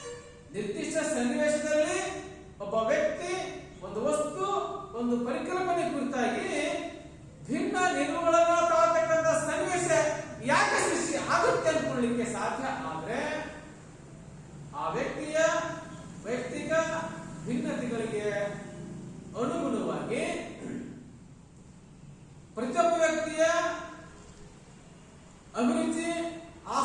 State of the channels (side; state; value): both; identical; correlation 1.00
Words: ನಿರ್ದಿಷ್ಟ ಸನ್ನಿವೇಶದಲ್ಲಿ ಒಬ್ಬ ವ್ಯಕ್ತಿ ಒಂದು ವಸ್ತು, ಒಂದು ಪರಿಕಲ್ಪನೆ ಕುರಿತಾಗಿ ಭಿನ್ನ ನಿಲುವುಗಳನ್ನು ತಾಳತಕ್ಕಂಥ